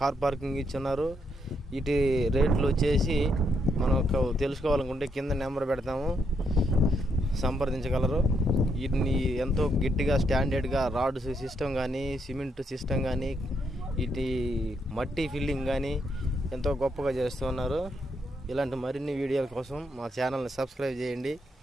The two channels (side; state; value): both; normal; correlation 0.77